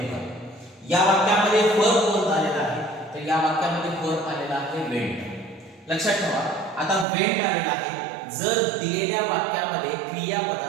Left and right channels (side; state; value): left; drops out; at 7.1 s